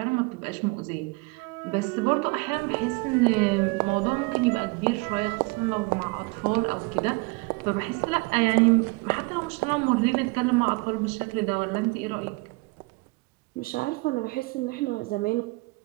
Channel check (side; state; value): left; quieter; 26.9 dB